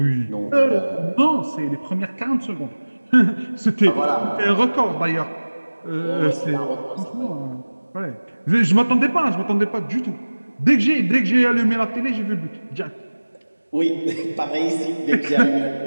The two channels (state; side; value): inverted; both; correlation -1.00